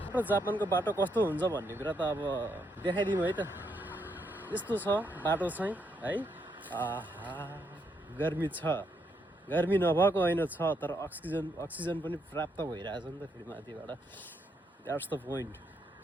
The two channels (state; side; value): normal; both; correlation 0.77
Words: र जापानको बाटो कस्तो हुन्छ भन्ने कुरा त अब देखाइदिउँ है त। यस्तो छ बाटो चाहिँ है। आहा गर्मी छ, गर्मी नभएको होइन छ, तर अक्सिजन पनि प्राप्त भइरहेछ नि त फेरि माथिबाट। That's the point.